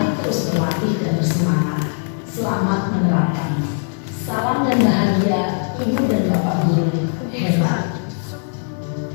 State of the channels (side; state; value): right; silent; 61 dB below the other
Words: terus berlatih dan bersemangat. Selamat menerapkan. Salam dan bahagia Ibu dan Bapak Guru hebat.